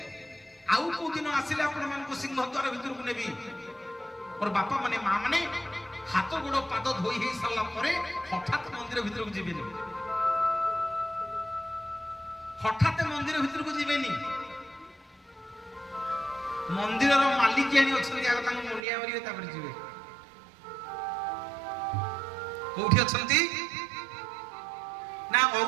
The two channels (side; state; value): left; drops out; at 18.9 s